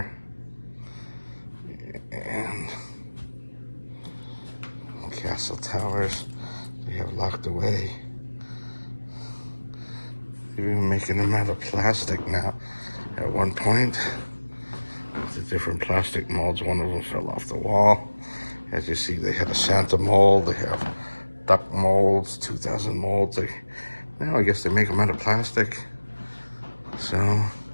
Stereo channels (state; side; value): inverted; both; correlation -1.00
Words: And castle towers they have locked away. They're even making them out of plastic now. At one point, the different plastic molds, one of them fell off the wall. As you see, they had a Santa mold, they have duck molds, 2000 molds. Now I guess they make them out of plastic. So,